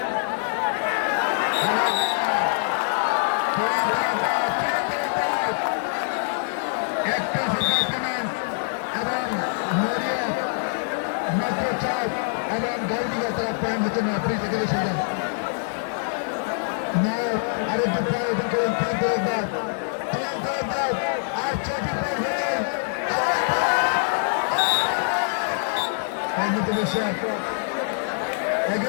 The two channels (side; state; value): right; silent; digital silence